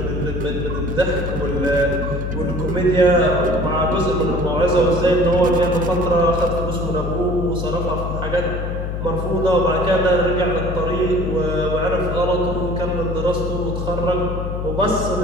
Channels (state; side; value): noise; left; hum, 3 dB below the sound